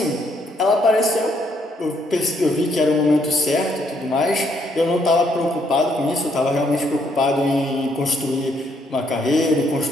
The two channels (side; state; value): both; normal; correlation 0.71